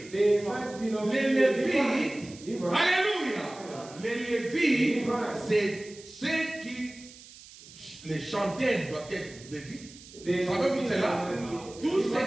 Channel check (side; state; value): right; noise; hiss, 19 dB below the sound